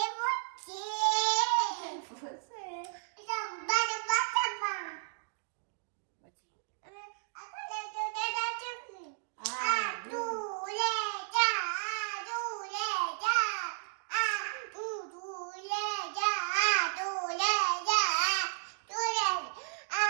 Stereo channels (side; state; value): left; silent; digital silence